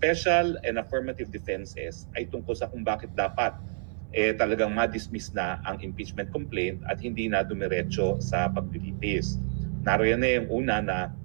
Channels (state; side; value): silent; left; 57 dB below the other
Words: and affirmative defenses ay tungkol sa kung bakit dapat talagang ma-dismiss na ang impeachment complaint at hindi na dumiretso sa paglilitis. Naroon na yung una na